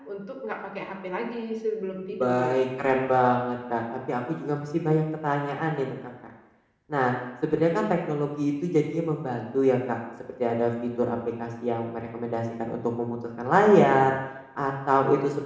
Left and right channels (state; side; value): identical; both; correlation 1.00